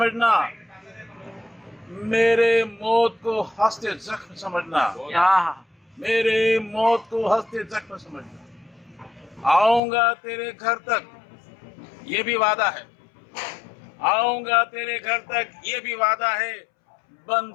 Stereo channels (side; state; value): right; drops out; at 9.8 s